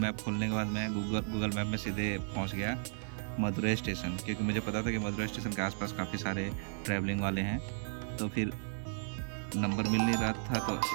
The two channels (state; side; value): silent; left; digital silence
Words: खोलने के बाद मैं गूगल मैप में सीधे पहुँच गया मदुरई स्टेशन, क्योंकि मुझे पता था कि मदुरई स्टेशन के आसपास काफ़ी सारे ट्रैवलिंग वाले हैं। तो फिर नंबर मिल नहीं रहा था, तो